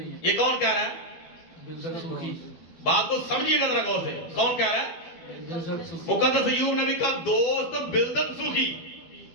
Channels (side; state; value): right; late; 12 ms